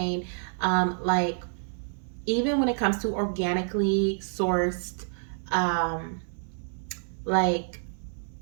like even when it comes to organically sourced like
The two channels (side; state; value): left; silent; 59 dB below the other